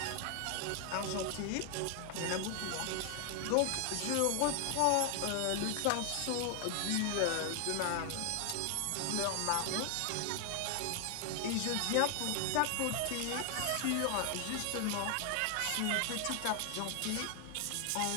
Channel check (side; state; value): both; different; correlation 0.00